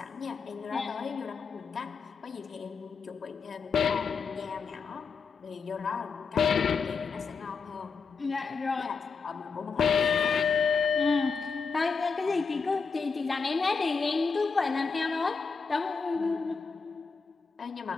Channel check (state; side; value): quieter; right; 5.1 dB